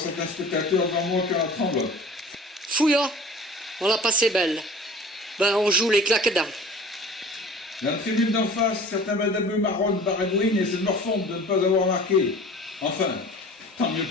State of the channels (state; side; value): normal; both; correlation 0.43